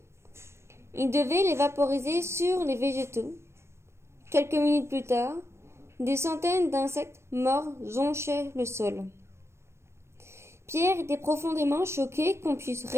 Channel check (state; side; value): late; left; 0.13 ms